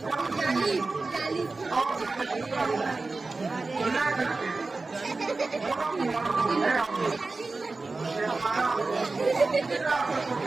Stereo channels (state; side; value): quieter; left; 3.6 dB